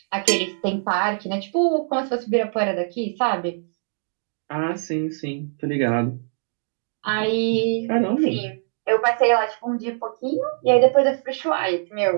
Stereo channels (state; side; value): silent; left; 63 dB below the other